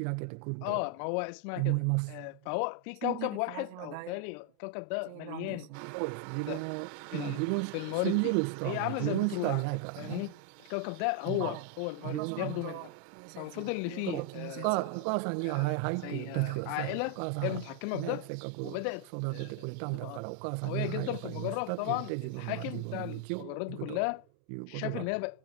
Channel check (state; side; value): different; both; correlation 0.00